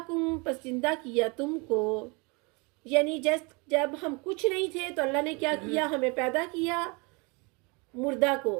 پس زندہ کیا تم کو. یعنی جب ہم کچھ نہیں تھے تو اللہ نے کیا کیا ہمیں پیدا کیا مردہ کو.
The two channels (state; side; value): quieter; left; 29.5 dB